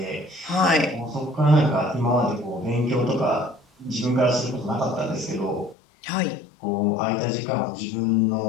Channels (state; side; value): drops out; right; at 5.8 s